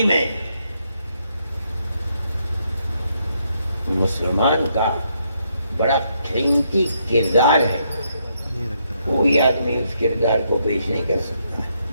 میں مسلمان کا بڑا قیمتی کردار ہے، کوئی آدمی اس کردار کو پیش نہیں کر سکتا ہے۔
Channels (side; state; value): both; inverted; correlation -0.76